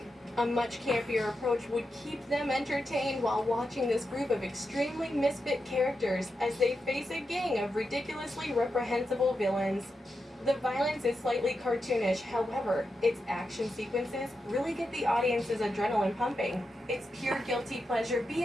A much campier approach would keep them entertained while watching this group of extremely misfit characters as they face a gang of ridiculously reprehensible villains. The violence is slightly cartoonish, however, its action sequences really get the audience's adrenaline pumping. It's pure guilty pleasure B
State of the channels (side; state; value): both; normal; correlation 0.87